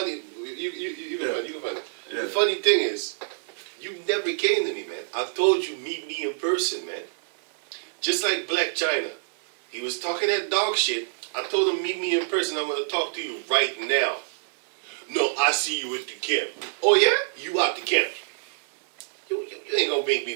you can find it. Yeah. The funny thing is, you never came to me, man. I told you, meet me in person, man. Just like Black China. He was talking that dog shit. I told him, meet me in person. I'm going to talk to you right now. No, I see you at the camp. Oh, yeah? You out the camp. You ain't going to make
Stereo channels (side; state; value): left; silent; digital silence